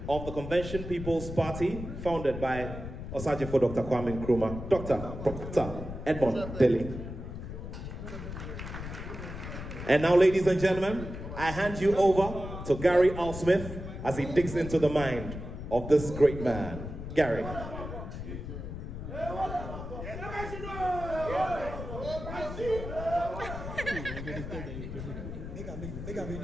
of the Convention People's Party, founded by Osajifo Dr. Kwame Nkrumah, Dr. Edmond Dele. And now, ladies and gentlemen, I hand you over to Gary L. Smith as he digs into the mind of this great man. Gary.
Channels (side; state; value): left; noise; rumble, 8 dB below the sound